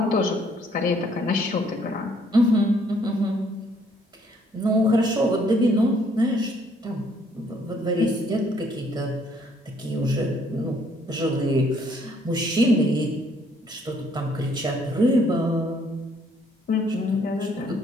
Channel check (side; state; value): both; normal; correlation 0.65